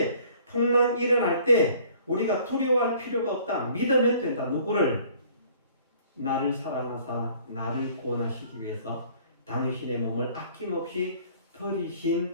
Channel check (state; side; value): inverted; both; correlation -0.55